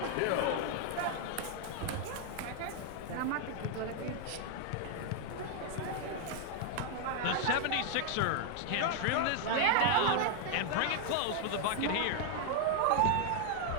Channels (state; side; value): different; both; correlation 0.00